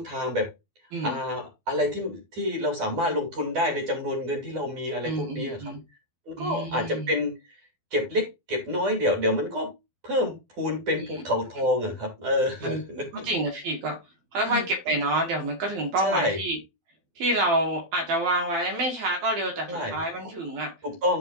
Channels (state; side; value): late; left; 12 ms